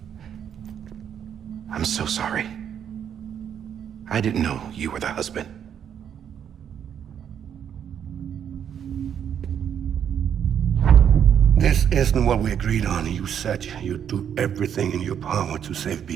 I'm so sorry. I didn't know you were the husband. This isn't what we agreed on. You said you'd do everything in your power to save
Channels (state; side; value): quieter; left; 8.7 dB